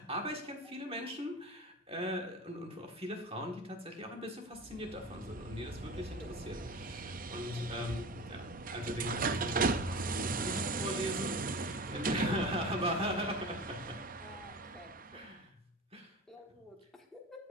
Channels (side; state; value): both; normal; correlation 0.32